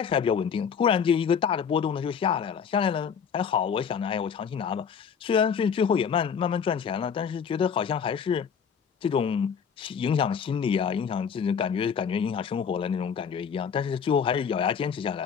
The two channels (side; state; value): right; quieter; 7.0 dB